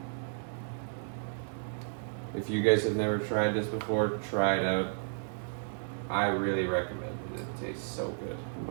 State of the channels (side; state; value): left; silent; digital silence